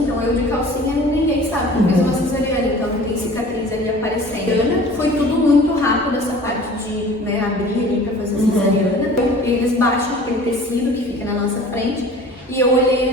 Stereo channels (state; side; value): normal; both; correlation 0.44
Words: então eu de calcinha ninguém sabe que fez uma cesariana, então não tem cicatriz ali aparecendo. Foi tudo muito rápido essa parte de, né, abrir ali para fazer cesariana. Então, eles baixam aquele tecido que fica na nossa frente e eu olhei